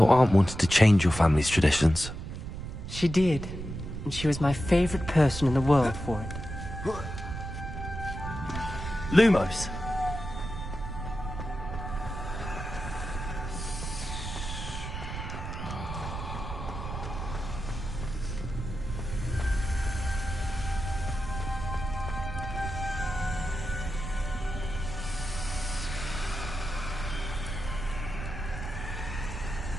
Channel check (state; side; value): noise; right; rumble, 7 dB below the sound